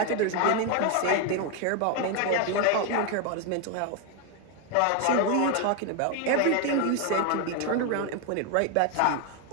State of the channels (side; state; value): both; different; correlation 0.01